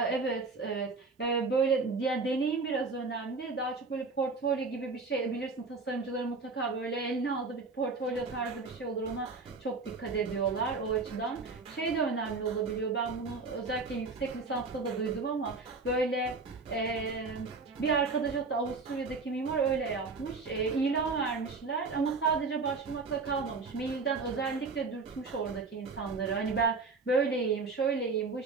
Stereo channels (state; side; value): quieter; left; 4.2 dB